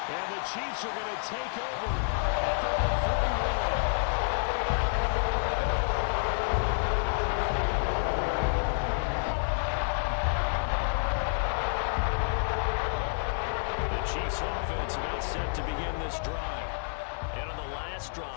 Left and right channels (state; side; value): silent; right; digital silence